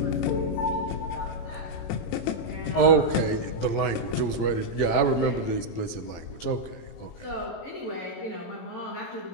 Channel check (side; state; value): right; late; 18 ms